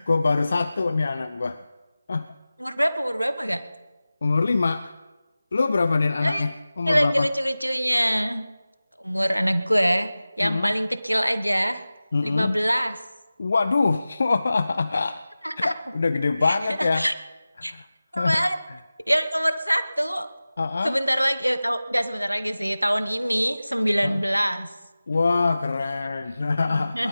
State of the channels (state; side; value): inverted; both; correlation -0.96